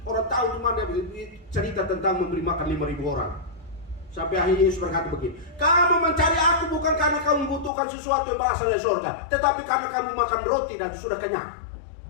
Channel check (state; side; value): drops out; right; at 7.7 s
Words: Orang tahu di mana dia cerita tentang memberi makan 5.000 orang. Sampai akhirnya Yesus berkata begini, kamu mencari aku bukan karena kamu membutuhkan sesuatu yang berasal dari surga, tetapi karena kamu makan roti dan sudah kenyang.